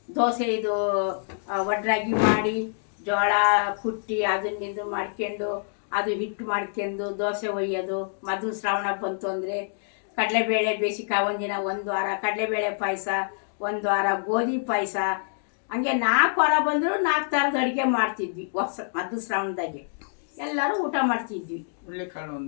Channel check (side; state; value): right; silent; digital silence